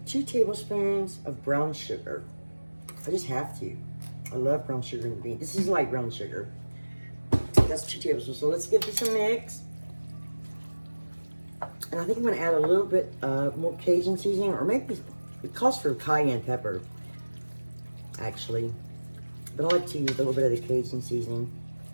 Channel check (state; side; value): inverted; both; correlation -1.00